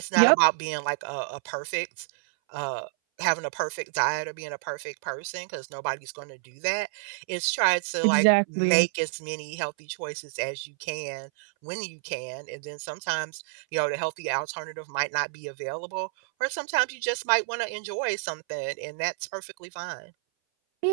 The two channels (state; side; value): silent; left; 58 dB below the other